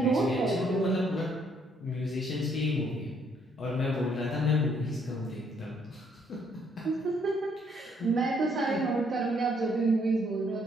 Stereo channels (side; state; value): both; normal; correlation 0.68